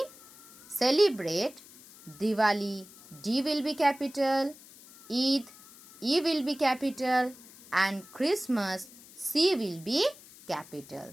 celebrate Diwali, D will be capital, Eid, E will be capital, and Christmas, C will be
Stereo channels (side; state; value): left; noise; hiss, 21 dB below the sound